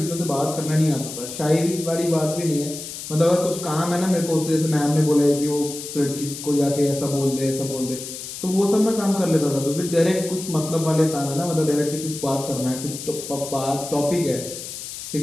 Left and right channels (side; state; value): left; noise; hiss, 9 dB below the sound